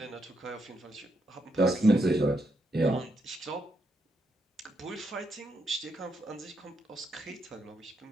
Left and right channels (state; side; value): normal; both; correlation 0.80